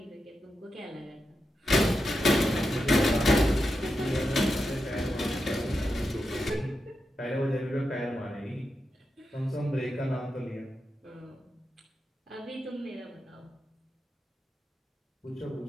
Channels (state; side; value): normal; both; correlation 0.88